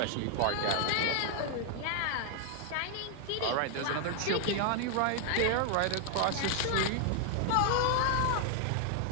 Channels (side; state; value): both; different; correlation 0.00